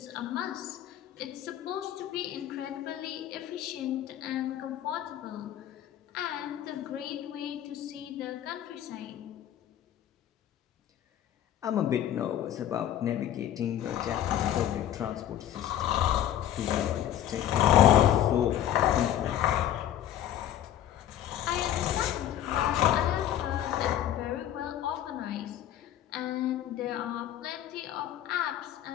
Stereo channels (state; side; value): quieter; right; 11.4 dB